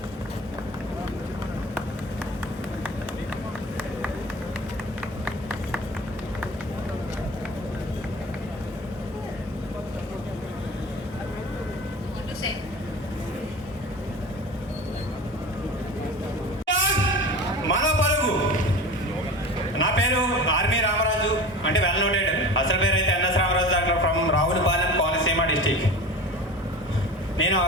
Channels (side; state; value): both; normal; correlation 0.34